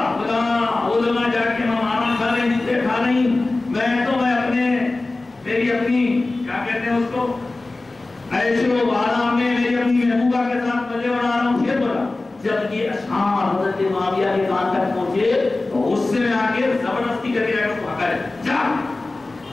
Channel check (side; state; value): right; quieter; 3.2 dB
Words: وہ لگا جا کے ماما کھا رہی جتنے کھا رہی، میں تو میں اپنے میری اپنی کیا کہتے ہیں اس کو عیش و آرام میں میری اپنی محبوبہ کے ساتھ مزے بنا رہا ہوں، شیر بولا۔ جب یہ اشعار حضرت معاویہ کے کان تک پہنچے تو غصے میں آ کے زبردستی کر کے اس کو ہکا جا،